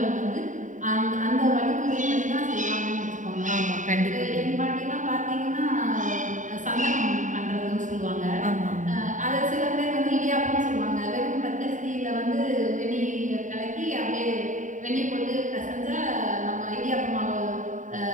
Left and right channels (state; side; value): late; left; 0.36 ms